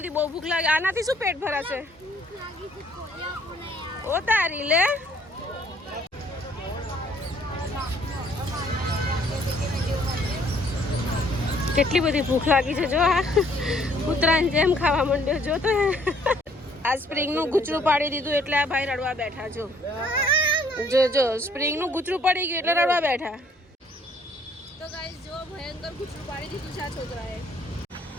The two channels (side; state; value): both; normal; correlation 0.62